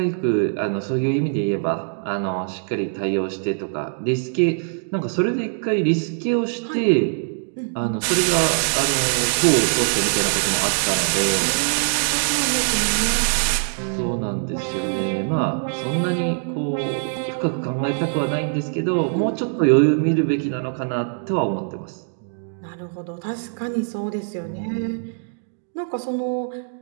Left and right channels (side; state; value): left; silent; digital silence